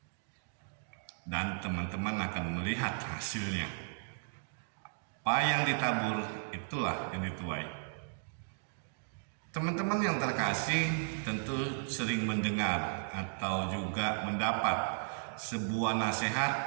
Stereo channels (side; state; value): left; silent; digital silence